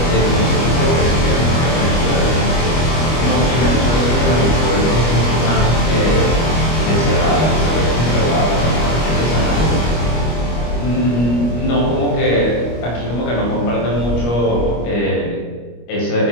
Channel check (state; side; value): late; right; 25 ms